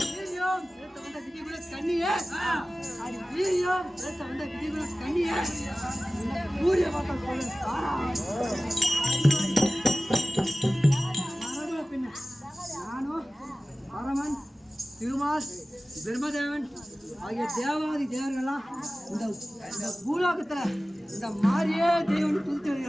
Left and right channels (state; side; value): normal; both; correlation 0.97